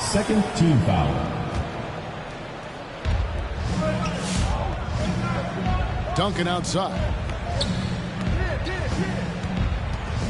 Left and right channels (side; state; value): both; identical; correlation 1.00